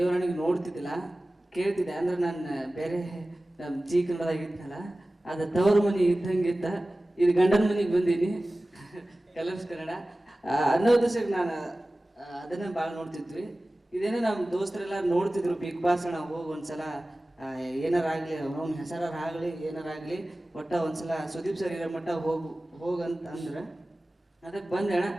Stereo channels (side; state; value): both; normal; correlation 0.97